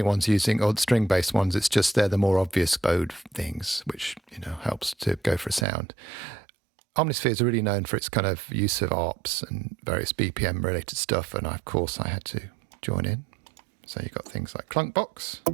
ones using, or string-based ones. It's just they're the more obvious bowed things, which, you know, helps to go for a sound. Omnisphere is really known for its kind of use of ARPs and various BPM-related stuff, and of course I had to join in. So you've got things like Clunkbox.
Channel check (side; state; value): left; drops out; at 5.7 s